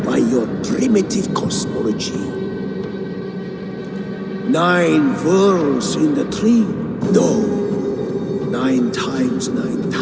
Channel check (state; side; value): identical; both; correlation 1.00